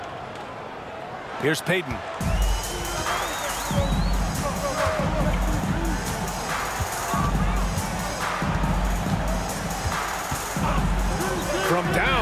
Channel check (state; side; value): identical; both; correlation 1.00